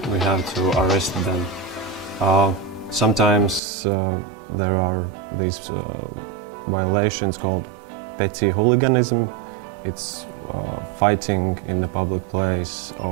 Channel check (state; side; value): drops out; left; at 3.6 s